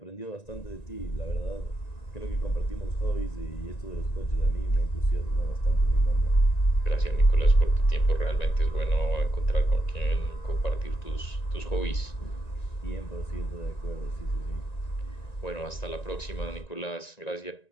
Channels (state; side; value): late; right; 1.9 ms